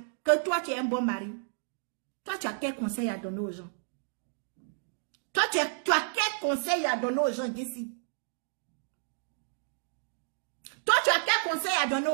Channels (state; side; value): silent; left; digital silence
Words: Que toi, tu es un bon mari. Toi, tu as quel conseil à donner aux gens? Toi, tu as quel conseil à donner aux gens, Jessie? Toi, tu as quel conseil à donner